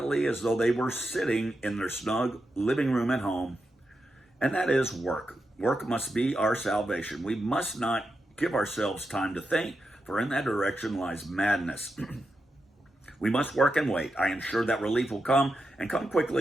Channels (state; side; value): normal; both; correlation 0.87